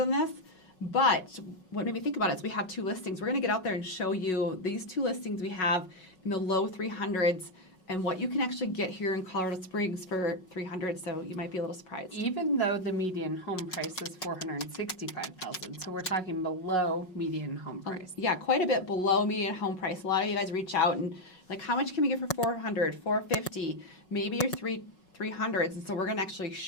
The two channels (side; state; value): right; late; 5.5 ms